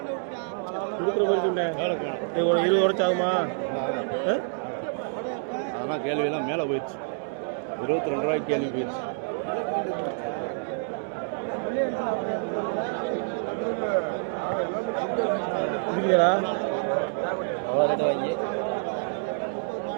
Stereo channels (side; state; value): left; silent; 60 dB below the other